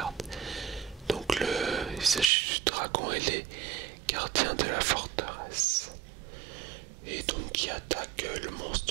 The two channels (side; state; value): left; drops out; at 2.3 s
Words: Donc il s'agit du dragon ailé, gardien de la forteresse, et donc qui attaque le